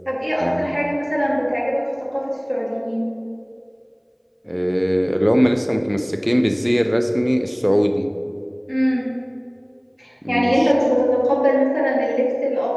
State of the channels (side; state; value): both; identical; correlation 1.00